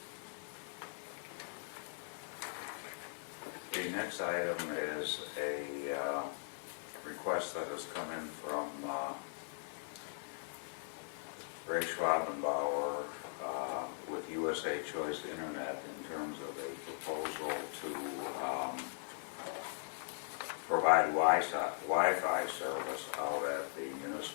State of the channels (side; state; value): right; silent; 51 dB below the other